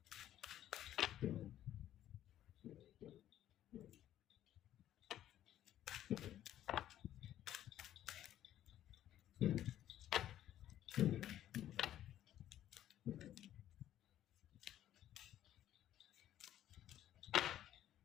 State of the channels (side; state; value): right; quieter; 12.1 dB